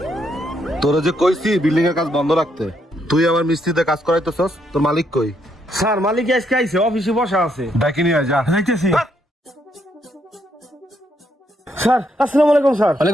তোরা যে কইছি বিল্ডিং এর কাজ বন্ধ রাখতে, তুই আমার মিস্ত্রিতে কাজ করাইতেছস, তোর মালিক কই? স্যার মালিক আজকে আইছে, অফিসে বসা আছে। ডাকি নিয়ে যা। যাইতেছি। স্যার আসসালামু আলাইকুম স্যার।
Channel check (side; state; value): both; normal; correlation 0.75